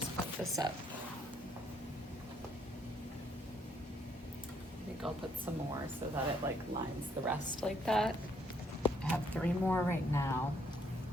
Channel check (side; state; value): both; normal; correlation 0.69